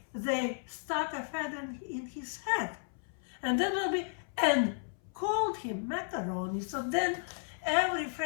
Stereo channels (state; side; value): silent; right; 55 dB below the other